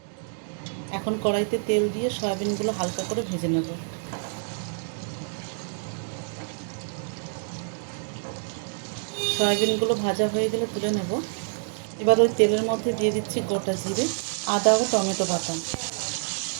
এখন কড়াইতে তেল দিয়ে সয়াবিনগুলো হালকা করে ভেজে নেব। সয়াবিনগুলো ভাজা হয়ে গেলে তুলে নেব। এবার ওই তেলের মধ্যে দিয়ে দিচ্ছি গোটা জিরে, আদা ও টমেটো বাটা।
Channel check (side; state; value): left; silent; digital silence